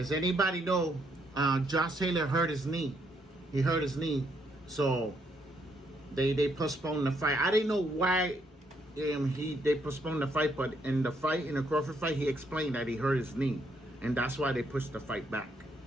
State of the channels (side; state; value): both; normal; correlation 0.73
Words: anybody know Josh Taylor hurt his knee? He hurt his knee. So they postponed the fight. I didn't know why they postponed the fight, but in the Crawford fight, he explained that he hurt his knee, and that's why they pushed the fight back. You know